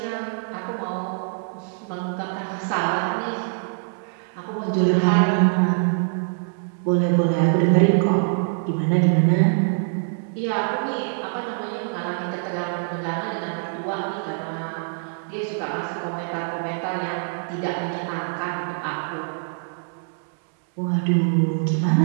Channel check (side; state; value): left; silent; 63 dB below the other